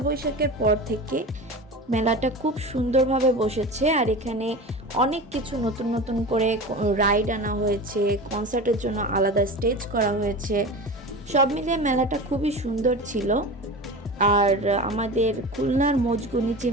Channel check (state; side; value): normal; both; correlation 0.30